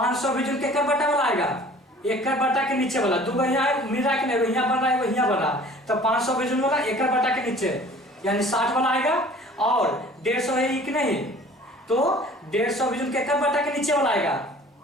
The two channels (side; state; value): both; normal; correlation 0.48